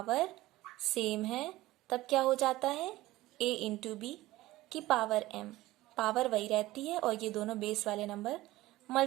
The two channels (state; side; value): quieter; left; 17.5 dB